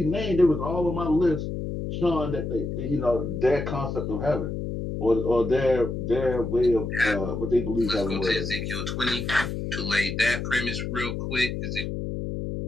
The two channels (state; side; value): noise; left; hum, 4 dB below the sound